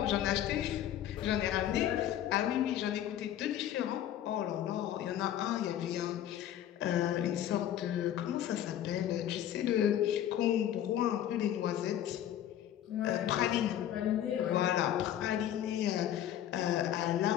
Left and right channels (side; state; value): right; quieter; 11.3 dB